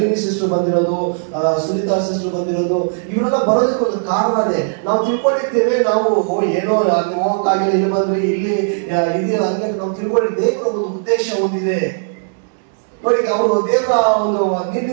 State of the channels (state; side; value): silent; left; 67 dB below the other